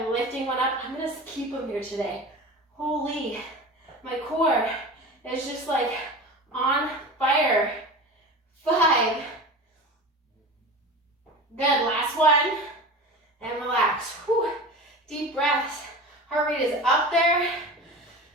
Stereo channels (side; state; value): both; normal; correlation 0.32